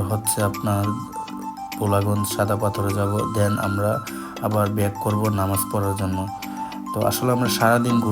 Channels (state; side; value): identical; both; correlation 1.00